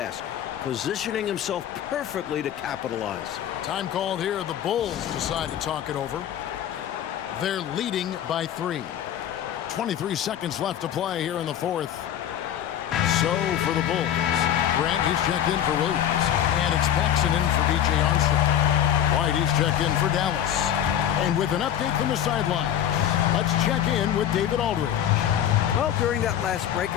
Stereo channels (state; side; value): quieter; right; 10.4 dB